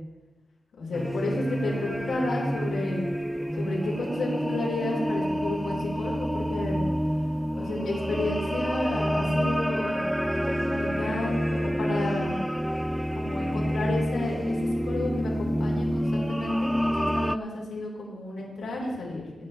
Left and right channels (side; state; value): both; normal; correlation 0.94